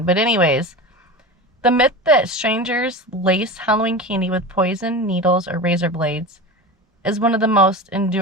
But anyways, the myth that strangers lace Halloween candy with poison, needles, or razor blades is one of the most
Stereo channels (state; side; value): normal; both; correlation 0.28